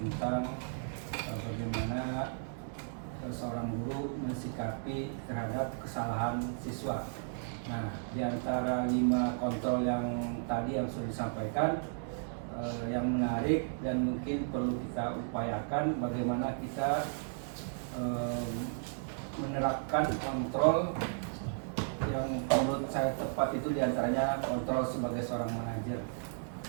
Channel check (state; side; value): silent; left; digital silence